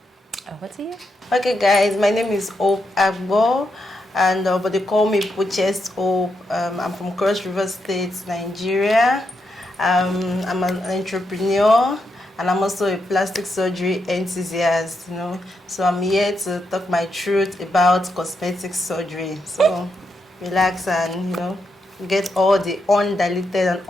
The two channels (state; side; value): normal; both; correlation 0.82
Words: Over to you. Okay, guys, my name is Hope Agbo, and but they call me Precious Hope. I'm from Cross River State, Nigeria. I'm an entrepreneur, and I'm also a plastic surgery enthusiast, you know. So I'm here to talk my truth about cosmetic surgery. So relax and, you know, get all the undiluted and